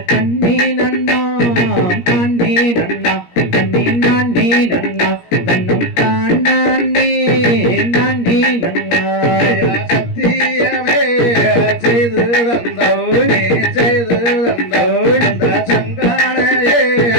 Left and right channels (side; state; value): right; late; 17 ms